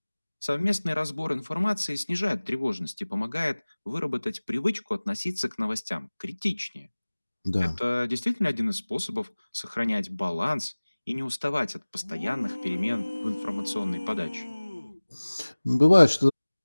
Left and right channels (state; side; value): inverted; both; correlation -1.00